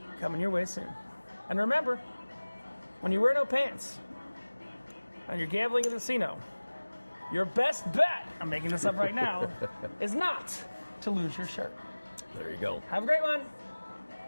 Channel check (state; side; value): inverted; both; correlation -1.00